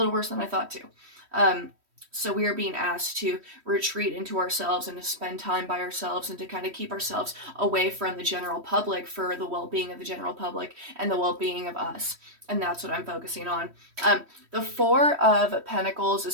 worse than I thought too. Um, so we are being asked to retreat into ourselves and to spend time by ourselves and to kind of keep ourselves away from the general public for the well-being of the general public and the well-being of us. And that's what I'm focusing on. The Four of Pentacles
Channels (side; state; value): left; late; 3.1 ms